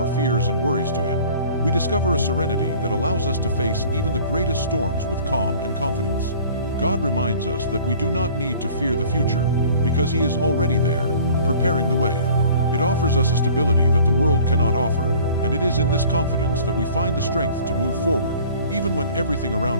fears and worries to Him, we discover a serenity that allows us to face even the greatest storms with calm and confidence. God reminds us that we do not need to fear the future, because He is already there, preparing the way. It offers us a stability that the world cannot offer, and it is in this confidence that we find the strength to move forward, even when everything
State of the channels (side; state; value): both; inverted; correlation -0.48